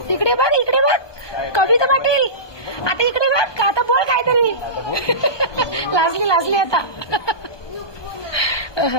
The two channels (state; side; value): late; right; 1.2 ms